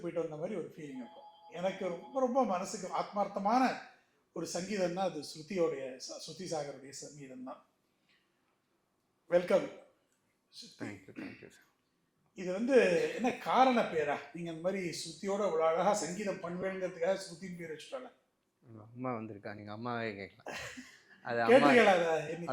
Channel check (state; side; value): identical; both; correlation 1.00